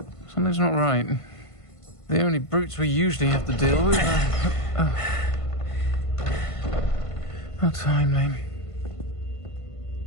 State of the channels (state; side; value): late; right; 1.5 ms